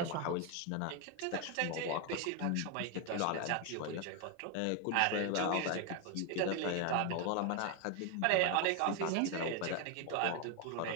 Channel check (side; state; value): both; different; correlation 0.01